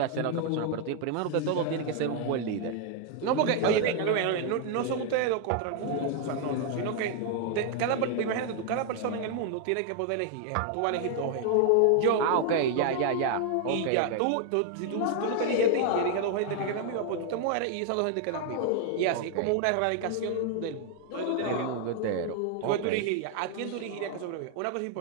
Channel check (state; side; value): different; both; correlation 0.00